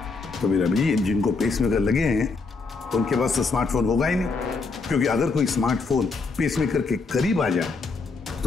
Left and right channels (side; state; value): right; quieter; 4.2 dB